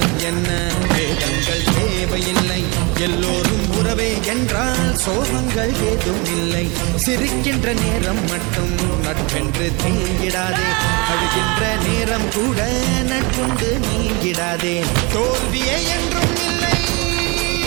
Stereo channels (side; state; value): left; quieter; 28.4 dB